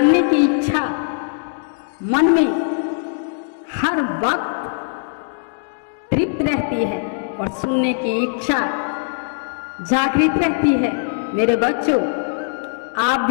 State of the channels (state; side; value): silent; right; digital silence